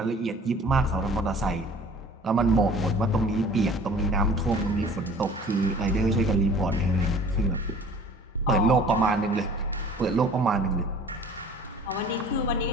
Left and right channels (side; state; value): both; normal; correlation 0.48